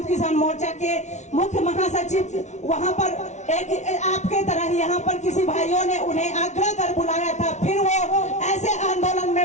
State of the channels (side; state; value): right; late; 0.33 ms